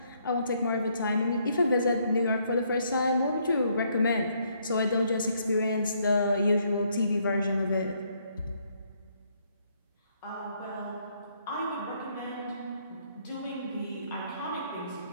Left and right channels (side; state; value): both; inverted; correlation -0.70